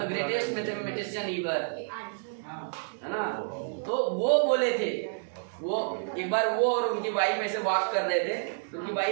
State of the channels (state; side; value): silent; left; digital silence